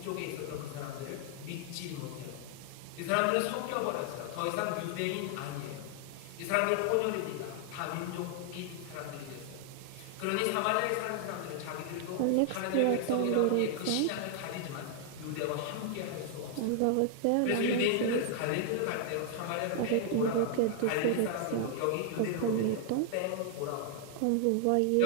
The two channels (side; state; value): both; different; correlation 0.00